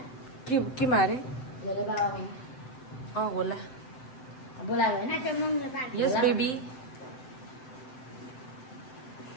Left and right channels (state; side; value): late; right; 7.8 ms